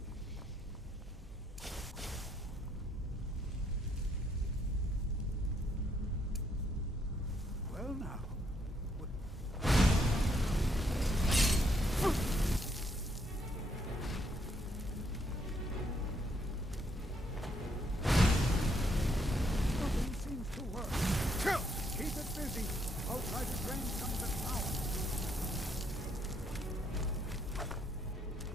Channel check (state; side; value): normal; both; correlation 0.72